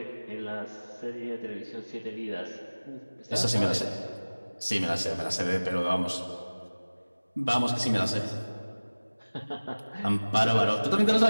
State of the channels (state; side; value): inverted; both; correlation -1.00